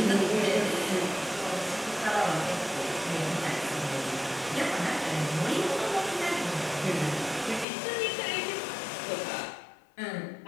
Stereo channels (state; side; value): drops out; right; at 7.7 s